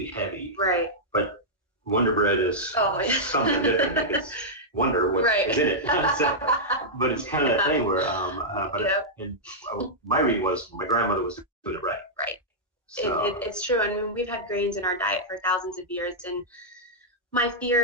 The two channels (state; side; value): normal; both; correlation -0.08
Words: heavy. Right. But Wonder Bread is something different. Like it's wonder what is in it. So, but it's kind of that thing where, my reading was my grandmother was doing it right. Right. So. It's true. I mean, we've had grains in our diet for thousands of years, and my